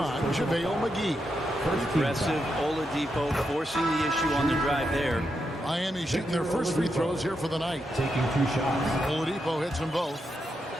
JaVale McGee. Aggressive Oladipo forcing the issue on the drive there. Miami shooting their first free throws here for the night. Taking 2 shots. Oladipo hits them both.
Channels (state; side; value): normal; both; correlation 0.84